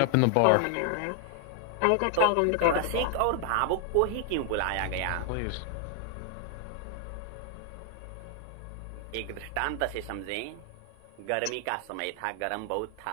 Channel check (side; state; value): both; different; correlation 0.00